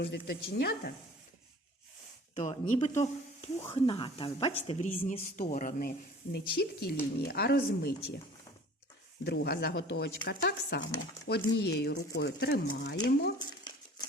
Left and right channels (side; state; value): both; normal; correlation 0.46